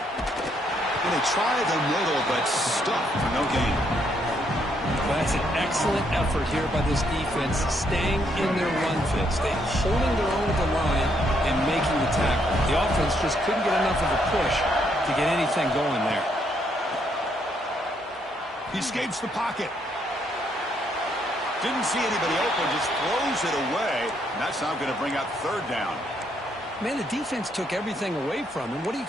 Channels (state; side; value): normal; both; correlation 0.73